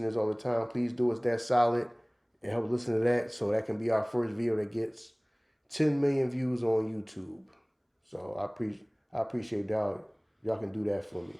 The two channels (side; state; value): both; identical; correlation 1.00